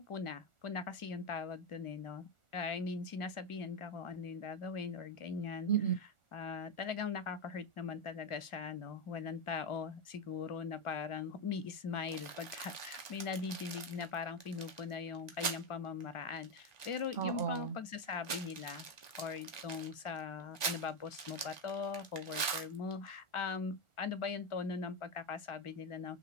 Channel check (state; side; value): late; right; 1.4 ms